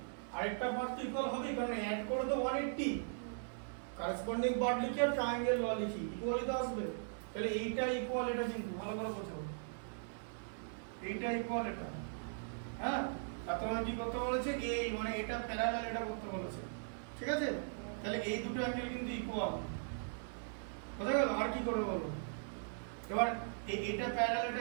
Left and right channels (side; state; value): left; silent; digital silence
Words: আরেকটা পার্ট তো ইকুয়াল হবে, কারণ অ্যাড করে তো 180, কারেসপন্ডিং পার্ট লিখি আর ট্রায়াঙ্গেল ল লিখি, ইকুয়ালই তো আসবে। তাহলে এইটা ইকুয়াল এটা, কিন্তু ভালো করে বোঝো, এইটা ইকুয়াল এটা, হ্যাঁ? আর তোমার কি করতে বলেছে, এই মানে এটা প্যারালাল এটা করতে বলেছে, ঠিক আছে? তাহলে এই দুটো অ্যাঙ্গেল কিন্তু ইকুয়াল, বুঝা গেল? আর কি করবে বলো এবার, এটা প্যারালাল